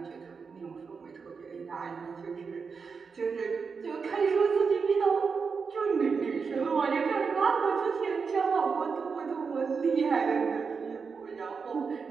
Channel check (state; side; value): quieter; left; 5.4 dB